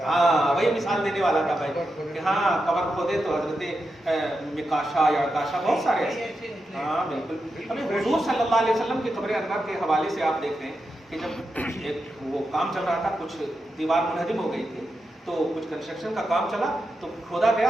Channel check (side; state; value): both; normal; correlation 0.87